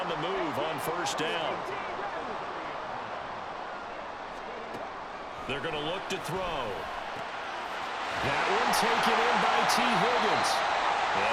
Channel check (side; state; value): both; identical; correlation 1.00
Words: the move on first down. They're going to look to throw. That one taken in by T. Higgins.